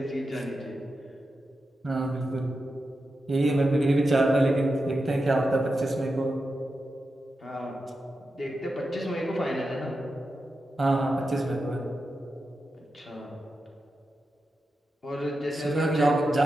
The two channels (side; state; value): both; normal; correlation 0.89